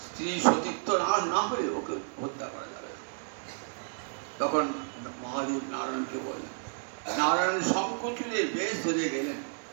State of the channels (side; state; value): left; silent; 57 dB below the other